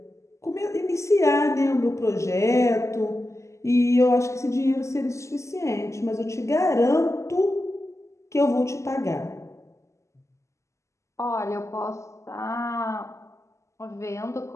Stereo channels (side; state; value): right; late; 0.14 ms